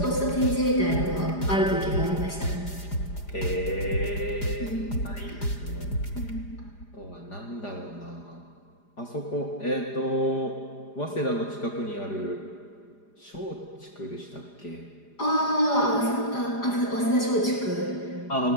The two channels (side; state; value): right; late; 4.9 ms